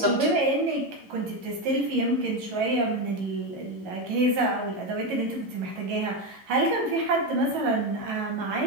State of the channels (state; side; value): late; left; 11 ms